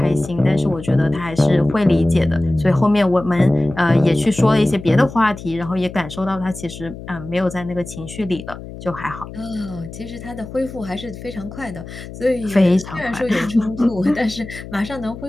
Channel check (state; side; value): noise; left; hum, 13 dB below the sound